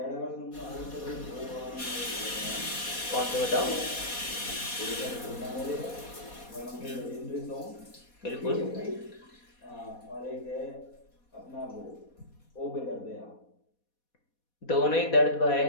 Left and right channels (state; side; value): late; right; 4.2 ms